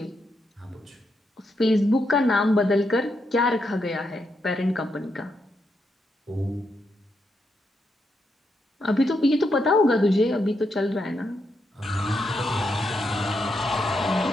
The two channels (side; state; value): both; normal; correlation 0.82